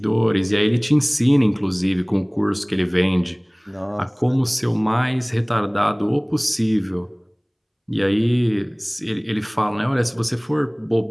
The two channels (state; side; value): identical; both; correlation 1.00